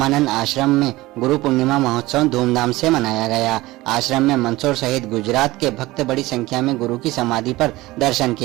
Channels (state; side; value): quieter; left; 19.1 dB